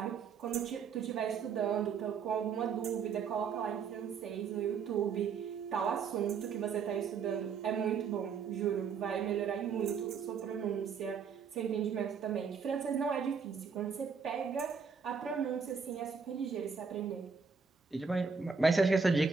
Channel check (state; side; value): quieter; left; 5.9 dB